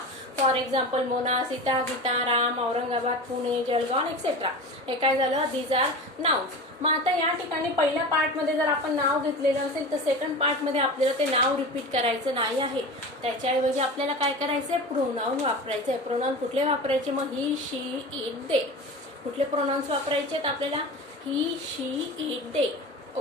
For example Mona, Sita, Gita, Ram, Aurangabad, Pune, Jalgaon etcetera. हे काय झालं, दीज आर नाउन्स. मग आता या ठिकाणी पहिल्या पार्ट मध्ये जर आपण नाव घेतलेलं असेल तर सेकंड पार्ट मध्ये आपल्याला ते नाव रिपीट करायचं नाही आहे. त्याच्याऐवजी आपल्याला काय करायचंय, प्रोनाऊन वापरायचंय. प्रोनाऊन कुठले वापरायचे, मग ही, शी, इट, दे. कुठले प्रोनाऊन्स वापरायचे आपल्याला, ही, शी, इट, दे.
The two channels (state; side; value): normal; both; correlation 0.30